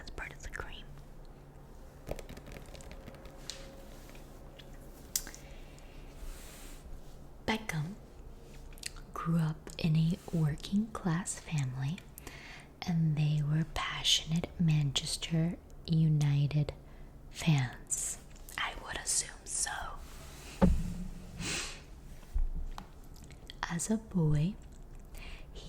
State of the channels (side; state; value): both; identical; correlation 1.00